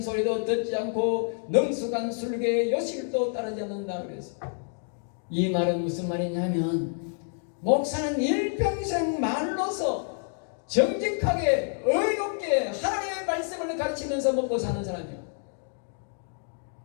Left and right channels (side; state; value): right; silent; 56 dB below the other